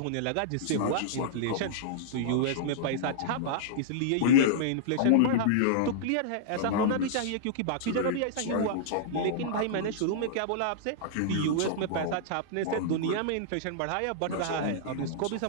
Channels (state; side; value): different; both; correlation -0.02